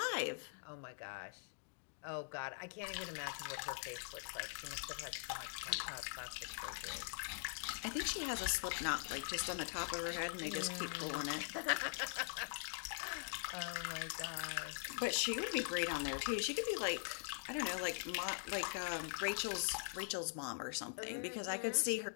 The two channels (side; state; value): right; silent; digital silence